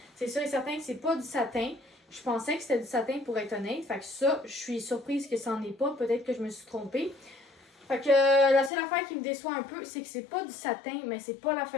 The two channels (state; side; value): drops out; right; at 8.7 s